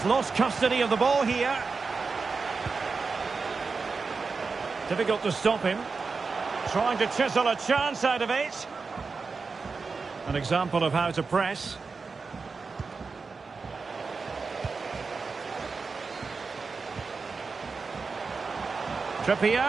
lost custody of the ball here. Difficult to stop him. Trying to chisel a chance out of it. An example of how to press.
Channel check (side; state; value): left; quieter; 4.6 dB